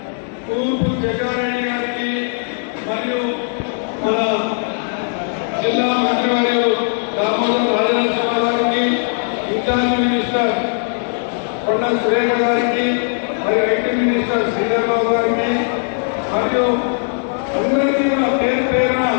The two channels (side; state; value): right; silent; 67 dB below the other